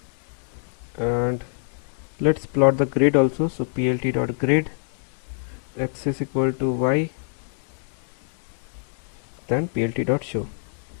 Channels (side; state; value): right; silent; digital silence